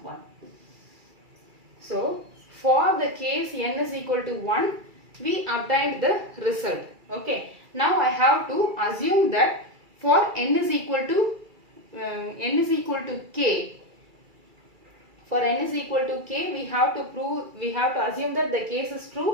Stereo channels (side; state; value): left; late; 2.3 ms